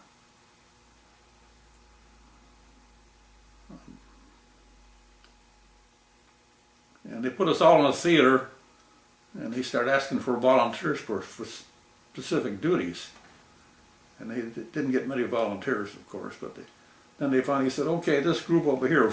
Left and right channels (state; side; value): identical; both; correlation 1.00